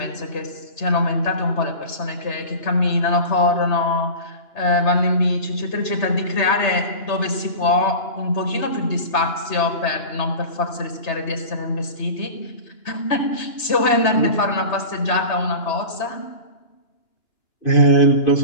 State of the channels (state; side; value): late; right; 3.3 ms